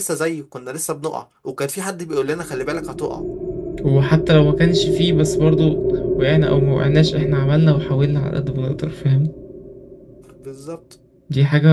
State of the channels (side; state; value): both; identical; correlation 1.00